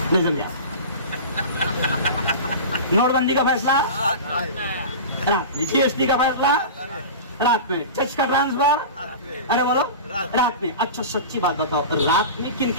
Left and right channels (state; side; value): inverted; both; correlation -0.31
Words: نہیں سمجھا؟ نوٹ بندی کا فیصلہ رات میں، جی ایس ٹی کا فیصلہ رات میں، جج کا ٹرانسفر ارے بولو رات میں۔ اچھا سچی بات بتاؤ، رات میں کن